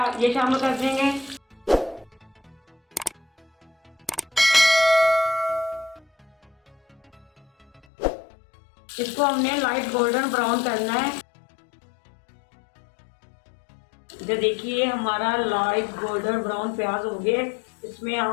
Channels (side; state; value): right; drops out; at 7.9 s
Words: ये शामिल कर देंगे। इसको हमने लाइट गोल्डन ब्राउन करना है। जो देखिए हमारा लाइट गोल्डन ब्राउन प्याज हो गया। इसमें